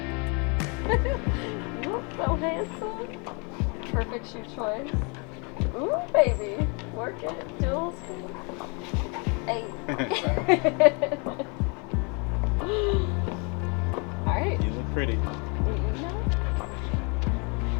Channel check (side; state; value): right; quieter; 32.9 dB